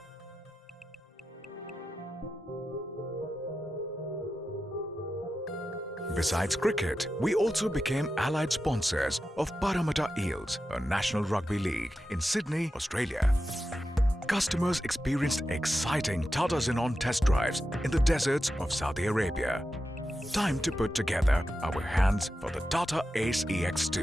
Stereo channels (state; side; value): normal; both; correlation 0.90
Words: Besides cricket, we also became allied sponsors of Parramatta Eels, a national rugby league in Sydney, Australia. Customers experienced exciting Tata Xenon test drives in the deserts of Saudi Arabia. Time to put together our hands for the Tata Ace